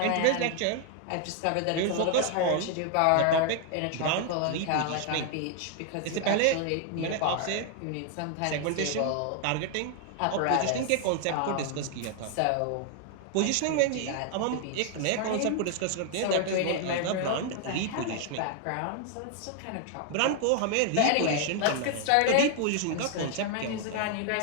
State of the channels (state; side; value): different; both; correlation 0.00